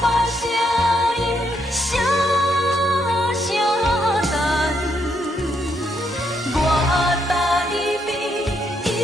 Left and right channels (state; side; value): normal; both; correlation 0.76